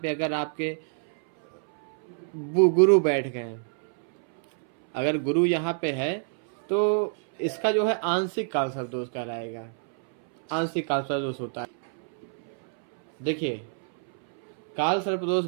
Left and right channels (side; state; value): left; silent; 60 dB below the other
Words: पे अगर आपके गुरु बैठ गए, अगर गुरु यहाँ पे है तो इसका जो है आंशिक काल सर्पदोष कहलाएगा। आंशिक काल सर्पदोष होता है। देखिए, काल सर्पदोष